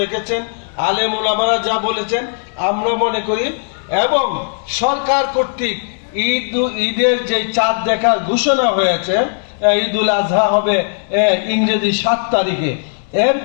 রেখেছেন, আলেম ওলামারা যা বলেছেন আমরা মনে করি, এবং সরকার কর্তৃক ঈদের যে চাঁদ দেখার ঘোষণা হয়েছে, ঈদুল আজহা হবে ইংরেজি 7 তারিখে, এর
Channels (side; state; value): right; silent; digital silence